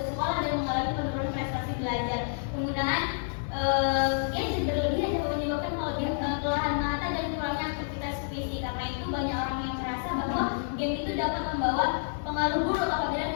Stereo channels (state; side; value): silent; right; digital silence